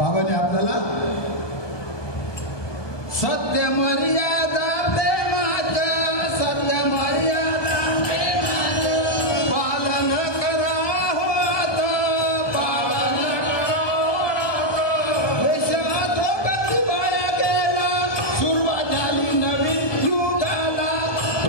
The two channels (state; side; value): late; right; 1.2 ms